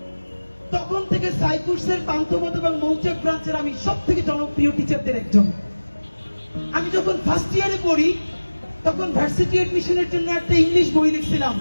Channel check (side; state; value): both; inverted; correlation -1.00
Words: তখন থেকে সাইকুর্সের পান্থপথ এবং মৌচাক ব্রাঞ্চের আমি সব থেকে জনপ্রিয় টিচারদের একজন। আমি যখন ফার্স্ট ইয়ারে পড়ি তখন ভার্সিটি এডমিশনের জন্য একটা ইংলিশ বই লিখছিলাম,